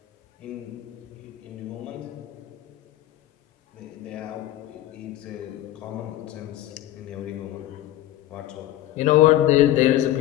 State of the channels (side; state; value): right; quieter; 14.1 dB